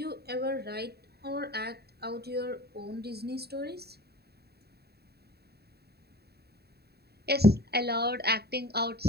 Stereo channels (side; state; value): left; late; 0.47 ms